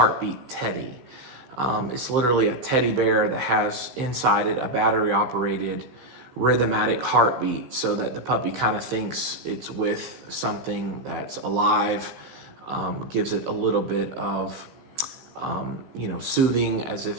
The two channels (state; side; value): late; left; 15 ms